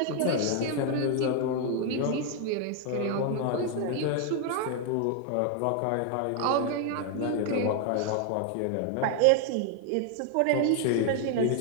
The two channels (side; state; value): both; different; correlation 0.01